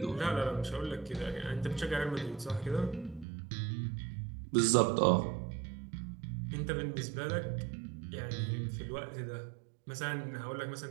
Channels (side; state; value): left; drops out; at 3.2 s